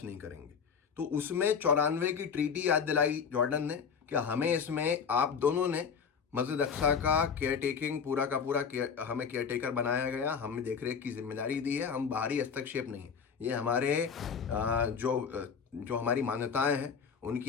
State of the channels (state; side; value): quieter; right; 6.4 dB